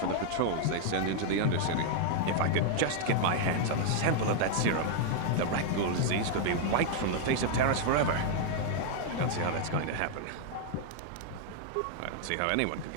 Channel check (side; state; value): both; different; correlation 0.00